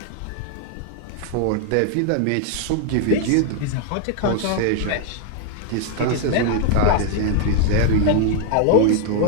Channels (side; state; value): both; different; correlation 0.00